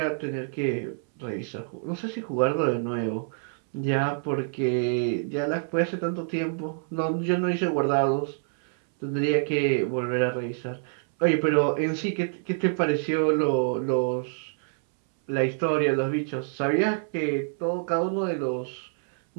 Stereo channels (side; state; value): left; silent; 60 dB below the other